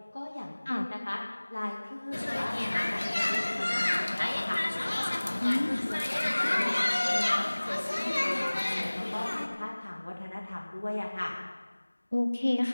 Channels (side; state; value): both; inverted; correlation -1.00